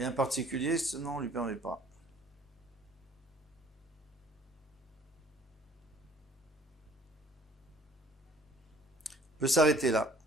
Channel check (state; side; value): normal; both; correlation 0.55